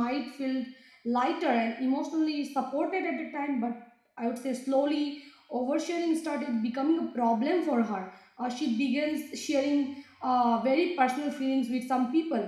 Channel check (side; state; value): both; identical; correlation 1.00